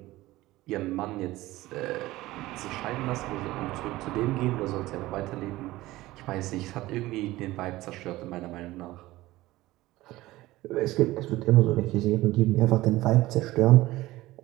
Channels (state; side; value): quieter; left; 17.8 dB